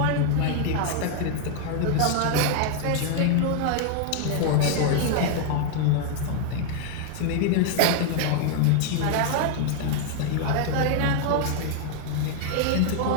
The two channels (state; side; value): different; both; correlation 0.00